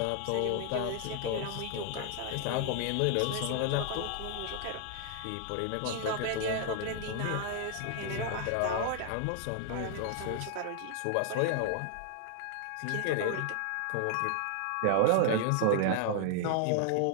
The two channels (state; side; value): different; both; correlation 0.00